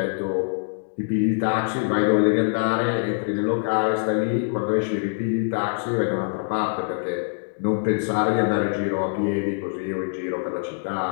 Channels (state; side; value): silent; right; digital silence